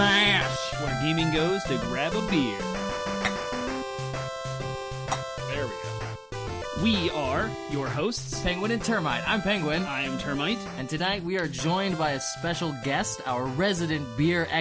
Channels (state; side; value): identical; both; correlation 1.00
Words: where gaming goes to grab a beer. There we go. We are your hosts, Penguin and Termite. I'm Penguin. I am Termite. And tonight we are joined by a special guest, our resident beer